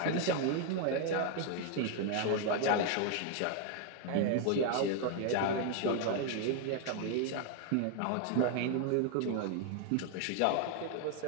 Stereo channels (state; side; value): different; both; correlation 0.00